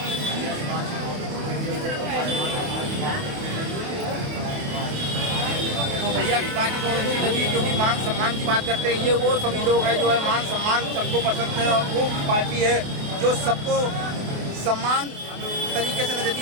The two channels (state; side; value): late; left; 28 ms